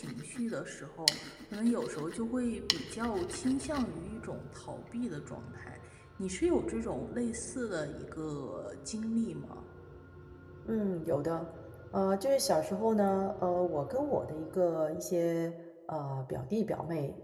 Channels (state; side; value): identical; both; correlation 1.00